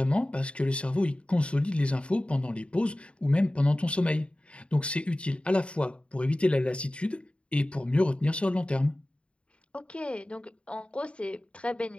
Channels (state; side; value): late; right; 0.058 ms